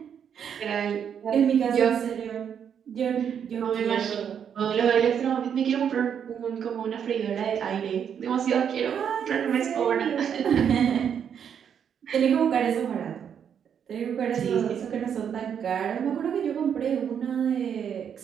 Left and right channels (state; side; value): quieter; left; 8.1 dB